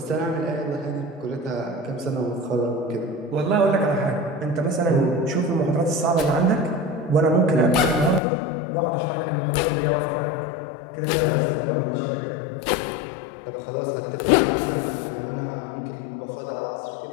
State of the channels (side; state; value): right; drops out; at 8.2 s